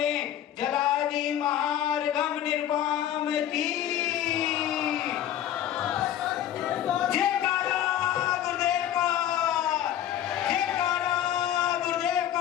जलादि महार्घम निर्वाम की जयकारा गुरुदेव का, जयकारा गुरुदेव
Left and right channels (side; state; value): right; quieter; 11.2 dB